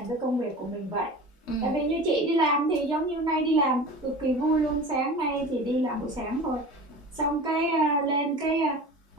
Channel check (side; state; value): both; normal; correlation 0.36